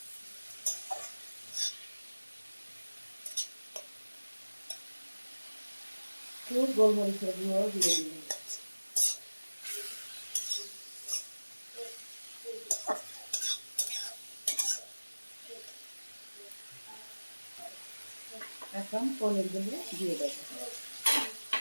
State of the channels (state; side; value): inverted; both; correlation -1.00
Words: একটু গোলমরিচের গুঁড়ো দিয়ে দিলাম। এখন পনিরগুলো দিয়ে দেবো।